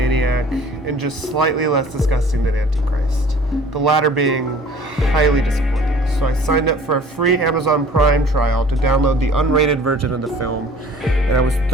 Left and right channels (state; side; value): normal; both; correlation 0.49